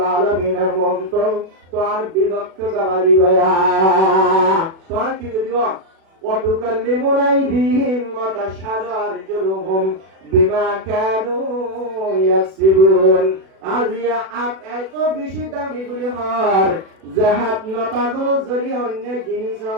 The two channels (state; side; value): late; left; 36 ms